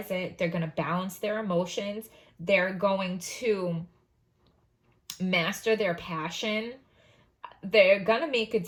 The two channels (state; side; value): identical; both; correlation 1.00